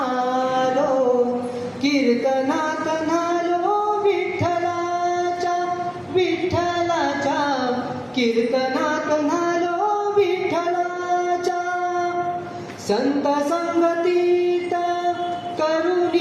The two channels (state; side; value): identical; both; correlation 1.00